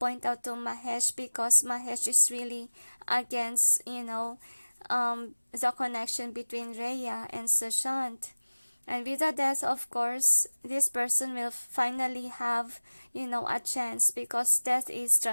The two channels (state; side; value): inverted; both; correlation -1.00